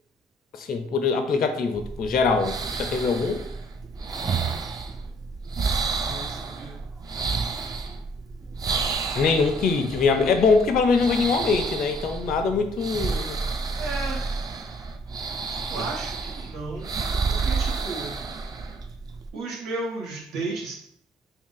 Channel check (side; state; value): both; normal; correlation 0.61